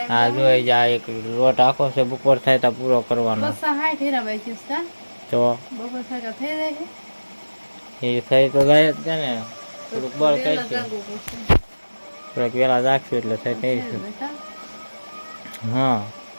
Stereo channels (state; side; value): inverted; both; correlation -1.00